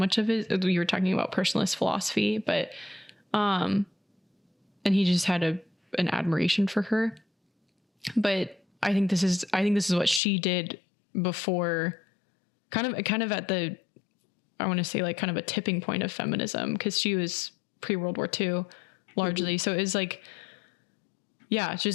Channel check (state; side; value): drops out; right; at 10.2 s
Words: of it, we were talking about personalist philosophy, but, and he just had an admiration for her. But I think this is what she did before, kind of at the, I want to say like kind of a tipping point of feminism, because she was pre-World War II largely. So it was like,